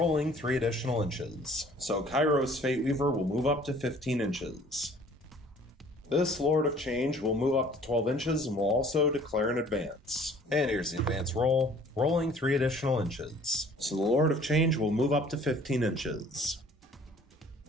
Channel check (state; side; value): normal; both; correlation 0.53